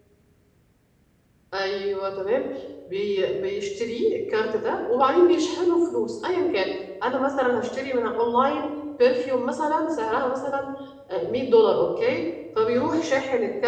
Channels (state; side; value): identical; both; correlation 1.00